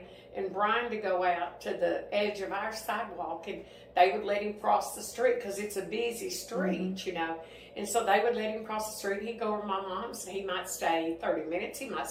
and Brian to go out to the edge of our sidewalk, and they would let him cross the street because it's a busy street, you know. And so they would let him cross the street. He'd go over to my mom's. He might stay 30 minutes. He might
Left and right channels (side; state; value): both; identical; correlation 1.00